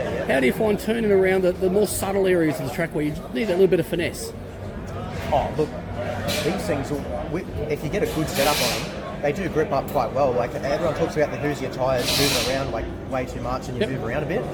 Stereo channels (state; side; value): identical; both; correlation 1.00